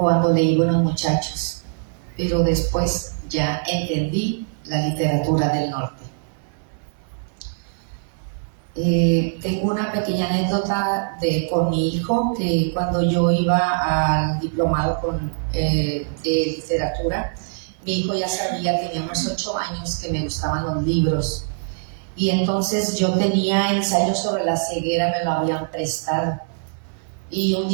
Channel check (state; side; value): silent; left; 59 dB below the other